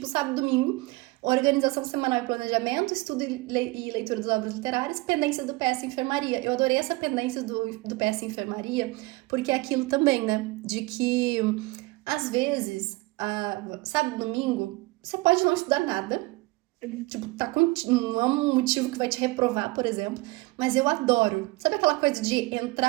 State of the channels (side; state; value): left; quieter; 22.9 dB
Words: sábado e domingo. Organização semanal e planejamento, estudo e leitura dos obras literárias, pendências do PS Enfermaria. Eu adorei essa pendência do PS Enfermaria, porque é aquilo também, né? De que, às vezes, sabe, domingo, você pode não estudar nada, tipo, não é um motivo que vai te reprovar, por exemplo, mas eu adoro. Sabe aquela coisa de